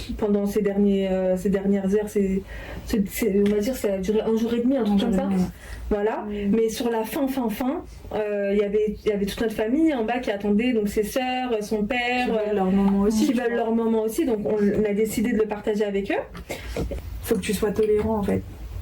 pendant ces dernières heures. On va dire ça a duré un jour et demi, un truc comme ça. Voilà. Mais sur la fin, il y avait toute notre famille en bas qui attendait, donc ses sœurs, son père, qui veulent leur moment aussi. Donc on a décidé de le partager avec eux. Faut que tu sois tolérant en fait.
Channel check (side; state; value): both; identical; correlation 1.00